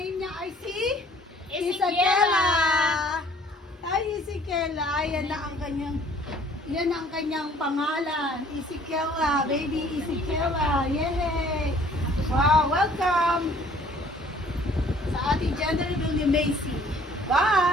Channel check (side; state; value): both; normal; correlation 0.56